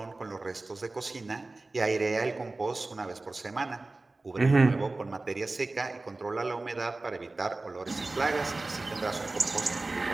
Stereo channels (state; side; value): quieter; left; 3.2 dB